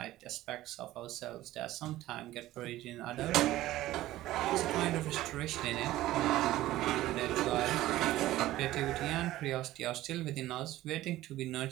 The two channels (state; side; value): quieter; left; 15.6 dB